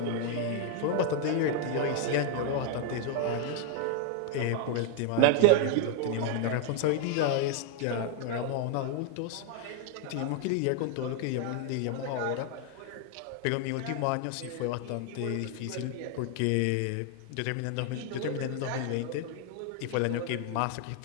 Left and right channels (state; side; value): different; both; correlation 0.00